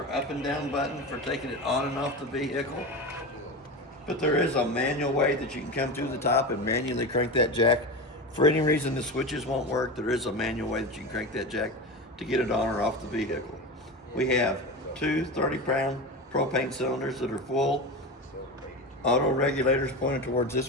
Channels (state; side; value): normal; both; correlation 0.24